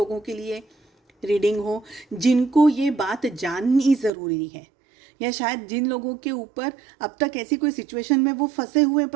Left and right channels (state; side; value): drops out; left; at 4.1 s